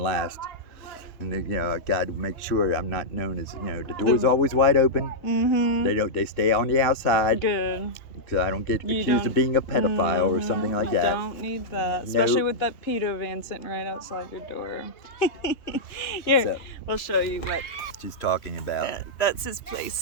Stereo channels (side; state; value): right; late; 3.1 ms